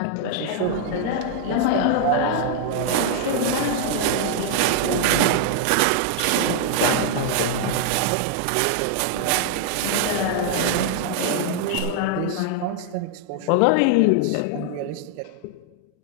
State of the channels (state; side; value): different; both; correlation 0.00